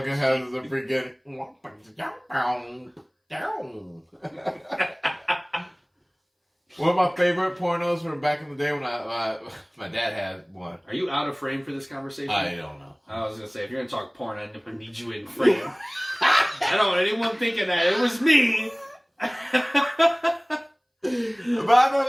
has the freaking... One of my favorite pornos from back in the day when my dad had one. Are you out of frame for this conversation? I don't know. I was gonna say, if you're gonna talk porn, I need you in frame. I don't want anyone thinking that it was me. But I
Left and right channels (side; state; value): both; identical; correlation 1.00